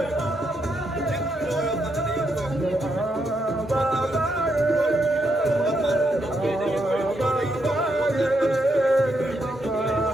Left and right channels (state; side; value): normal; both; correlation 0.79